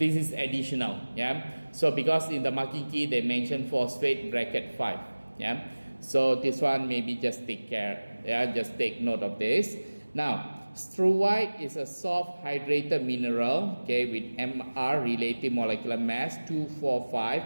is additional. Yeah, so because in the marking key they mention phosphate bracket 5. Yeah, so this one maybe just take care. Yeah, just take note of this. Now struvite is a soft hydrated mineral, okay, with Mr relative molecular mass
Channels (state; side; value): inverted; both; correlation -1.00